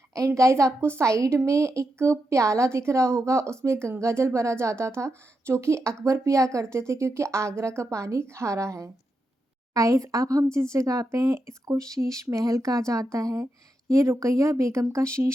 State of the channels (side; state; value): both; normal; correlation 0.85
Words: एंड गाइस आपको साइड में एक प्याला दिख रहा होगा उसमें गंगा जल भरा जाता था जो कि अकबर पिया करते थे क्योंकि आगरा का पानी खारा है। गाइस अब हम जिस जगह पे हैं इसको शीश महल कहा जाता है। ये रुकैया बेगम का